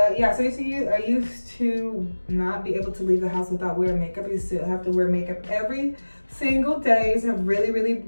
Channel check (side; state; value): both; inverted; correlation -1.00